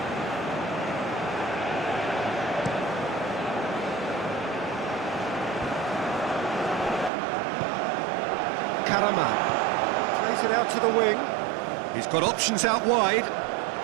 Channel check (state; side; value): drops out; left; at 7.1 s